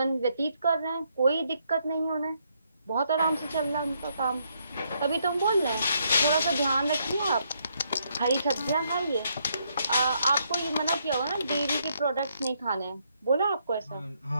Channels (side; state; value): both; inverted; correlation -0.74